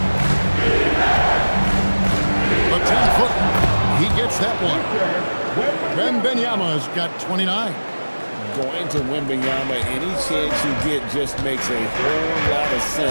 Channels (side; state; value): both; inverted; correlation -1.00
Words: The 10-foot. He gets that one. Wembanyama's got 29. Going to Wembanyama, any chance you get just makes a whole lot of